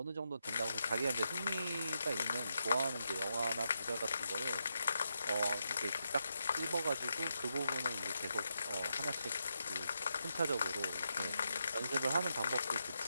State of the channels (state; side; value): inverted; both; correlation -0.84